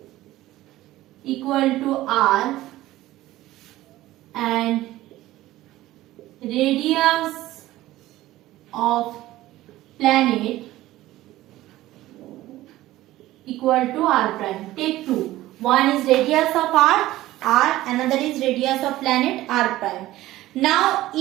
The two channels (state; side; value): quieter; left; 16.1 dB